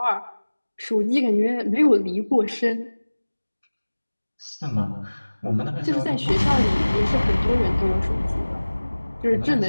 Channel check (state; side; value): inverted; both; correlation -1.00